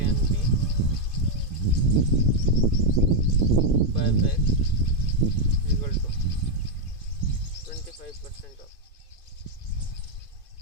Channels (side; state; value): right; late; 2.5 ms